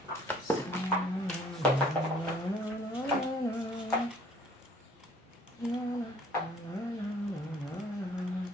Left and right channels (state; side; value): normal; both; correlation 0.56